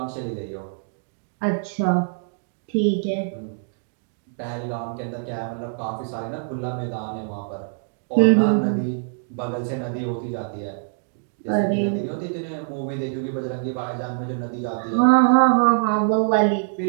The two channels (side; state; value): left; silent; digital silence